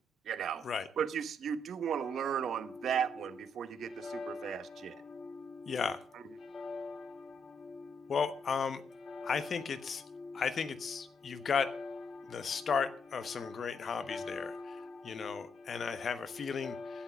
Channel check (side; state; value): both; normal; correlation 0.75